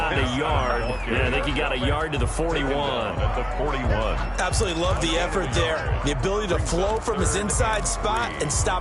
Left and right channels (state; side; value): identical; both; correlation 1.00